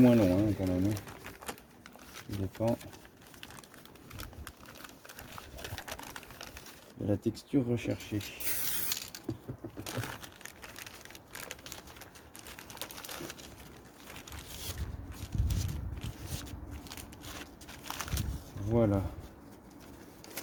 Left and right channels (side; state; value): both; identical; correlation 1.00